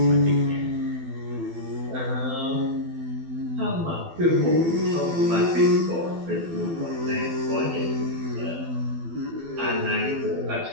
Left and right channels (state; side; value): late; left; 12 ms